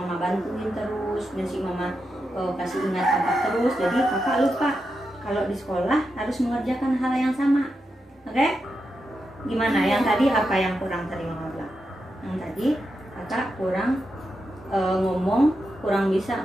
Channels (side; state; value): both; normal; correlation 0.87